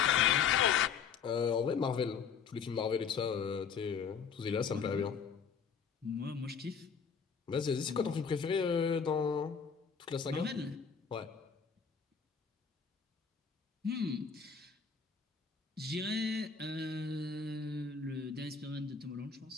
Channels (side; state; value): right; quieter; 6.4 dB